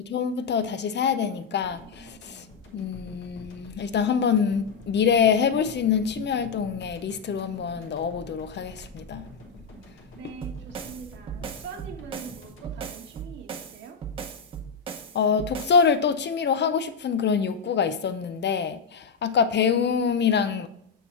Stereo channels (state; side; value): quieter; right; 5.8 dB